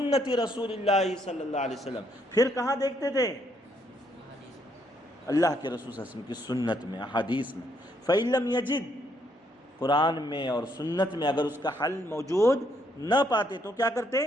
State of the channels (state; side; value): normal; both; correlation 0.72